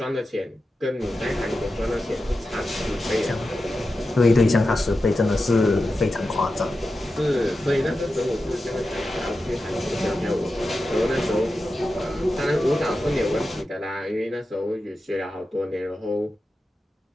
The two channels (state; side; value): normal; both; correlation 0.91